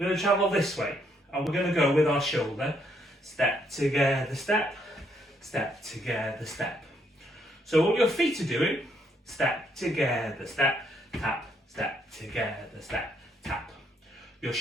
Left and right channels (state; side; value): normal; both; correlation 0.72